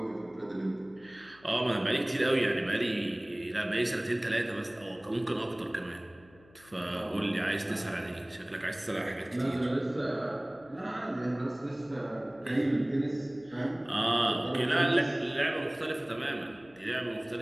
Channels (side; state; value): left; noise; hum, 26 dB below the sound